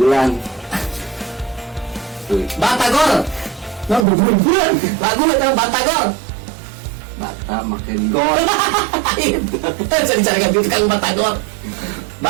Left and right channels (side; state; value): left; drops out; at 4.0 s